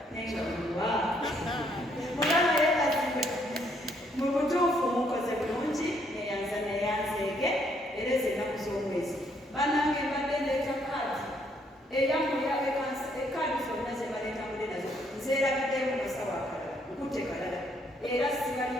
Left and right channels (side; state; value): both; normal; correlation 0.70